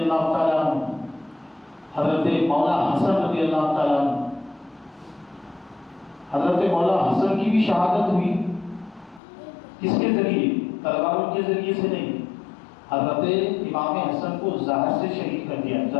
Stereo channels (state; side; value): drops out; right; at 9.2 s